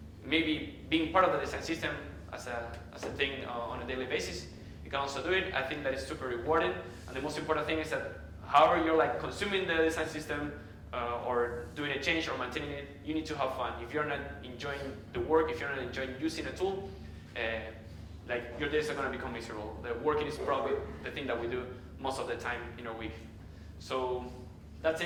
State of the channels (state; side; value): identical; both; correlation 1.00